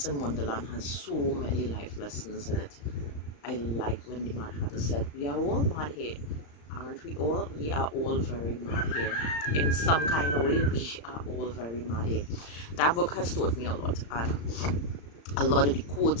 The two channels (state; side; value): late; right; 35 ms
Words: in Wonderland has so many life lessons in it. I like when the Mad Hatter said, "We are all mad here, aren't we all? We are all very mad here. In some kind of way, we are all very mad here." That book has taught me a lot, and a lot of the